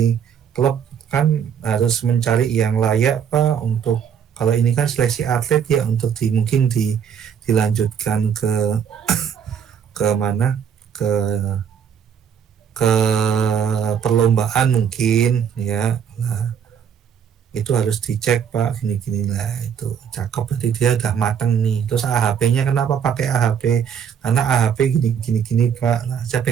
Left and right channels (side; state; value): left; quieter; 7.9 dB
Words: klub kan harus mencari yang layak Pak, untuk kalau ini kan seleksi atlet ya, untuk mungkin dilanjutkan ke mana, ke perlombaan mungkin ya. Nah, itu harus dicek Pak, gini-gini lah, itu cakep, berarti dia udah mateng nih. Terus AHP-nya kenapa pakai AHP? Karena AHP gini Pak. Nah, saya